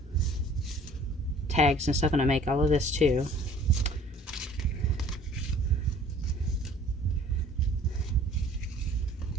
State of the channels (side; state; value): both; normal; correlation 0.52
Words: tags and stuff, and I make all of this too.